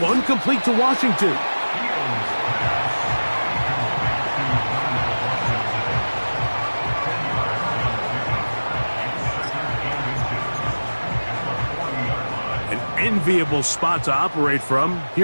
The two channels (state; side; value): inverted; both; correlation -1.00